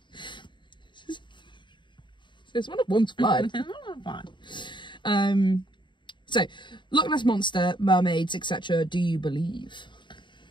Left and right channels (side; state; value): right; late; 0.23 ms